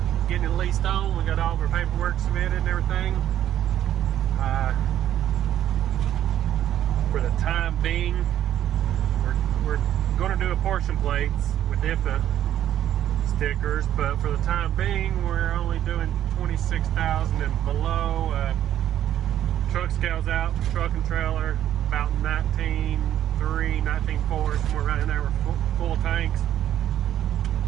getting it leased on. We got all of our paperwork submitted and everything. For the time being, we're going to do apportion plates with IFA stickers, but for the time being, we're only doing 26,000 and below. Truck scales out, truck and trailer, about 19.3, 19.4, somewhere around in there with full tanks.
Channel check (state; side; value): quieter; left; 11.4 dB